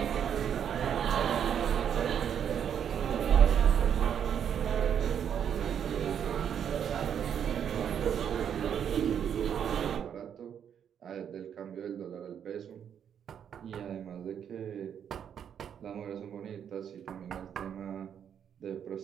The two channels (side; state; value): left; quieter; 8.6 dB